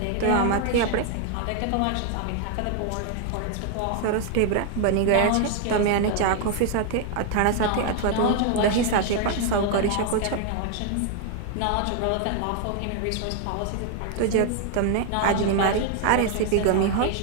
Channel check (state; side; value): different; both; correlation 0.00